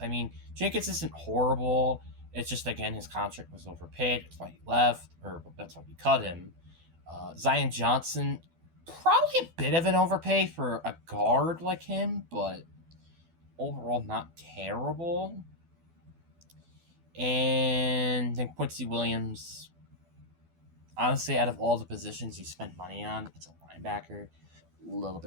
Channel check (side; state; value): left; late; 12 ms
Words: Jenkins isn't horrible. It's just, again, his contract was overpaid. That's why he left, or that's why we cut him. Zion Johnson, probably a bit of an overpay for a guard like him, but overall not terrible. And then Quincy Williams, honestly, out of all the positions you spent money on, it's a linebacker. A little